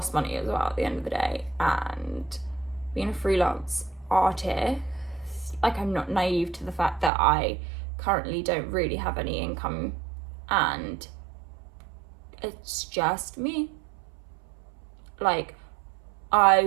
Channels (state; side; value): drops out; left; at 7.1 s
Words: money as well at the end of the day. And being a freelance artist, like, I'm not naive to the fact that I currently don't really have any income, and it's just me. Like, I